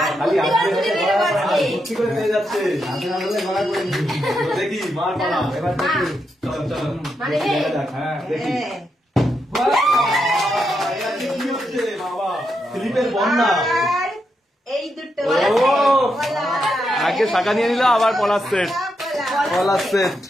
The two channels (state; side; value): normal; both; correlation 0.83